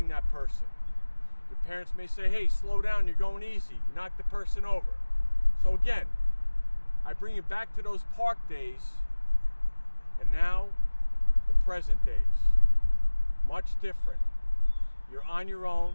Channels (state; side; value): inverted; both; correlation -1.00